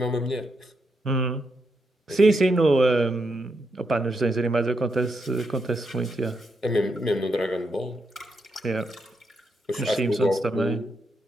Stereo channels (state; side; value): normal; both; correlation 0.81